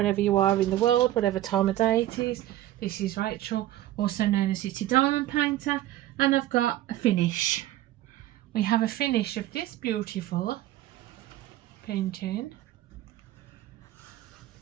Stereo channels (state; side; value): quieter; left; 14.1 dB